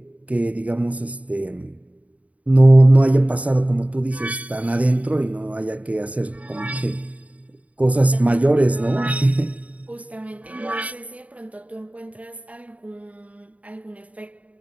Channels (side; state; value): left; late; 0.068 ms